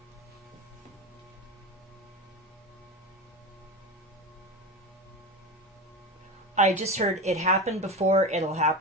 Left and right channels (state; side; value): normal; both; correlation 0.23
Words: I just heard it happened before, it'll